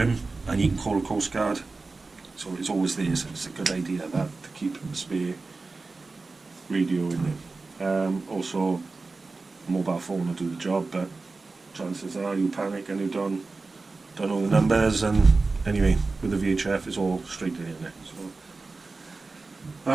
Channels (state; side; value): quieter; left; 3.8 dB